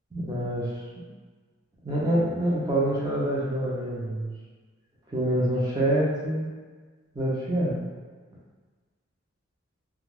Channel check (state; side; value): normal; both; correlation 0.56